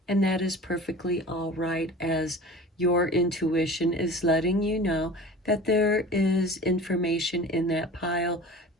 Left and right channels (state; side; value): normal; both; correlation 0.38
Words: and that is perfectly all right, as your intuition is letting you know that there is information in that pile